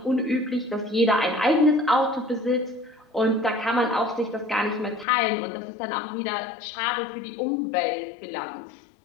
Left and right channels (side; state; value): right; drops out; at 5.1 s